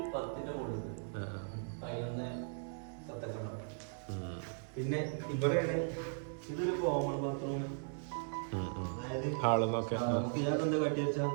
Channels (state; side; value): silent; left; 53 dB below the other